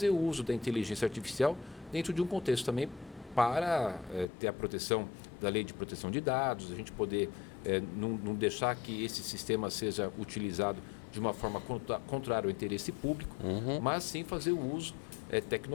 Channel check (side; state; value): right; drops out; at 4.2 s